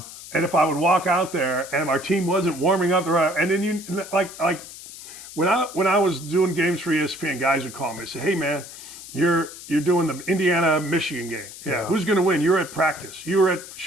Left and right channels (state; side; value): noise; left; hiss, 14 dB below the sound